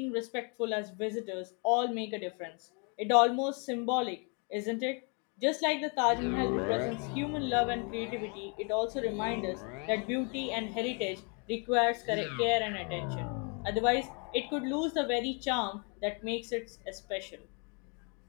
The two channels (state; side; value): quieter; right; 35.6 dB